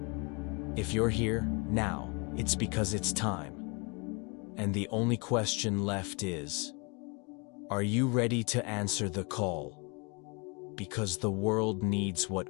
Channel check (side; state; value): right; quieter; 31.9 dB